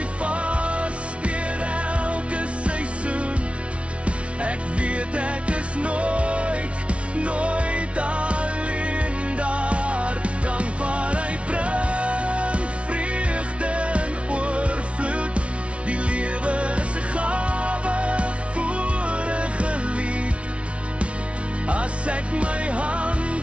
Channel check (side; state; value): left; late; 0.061 ms